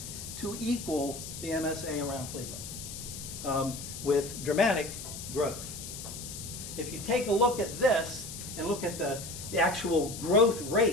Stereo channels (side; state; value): left; noise; hiss, 10 dB below the sound